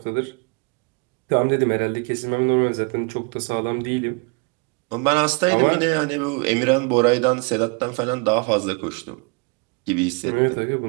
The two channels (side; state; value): left; quieter; 32.3 dB